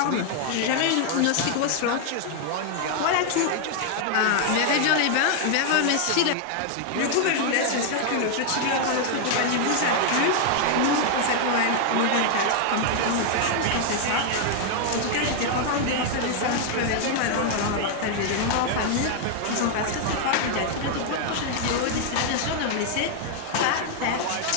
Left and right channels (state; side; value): different; both; correlation 0.00